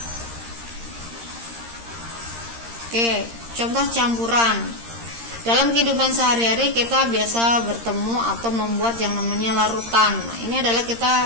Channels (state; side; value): late; left; 13 ms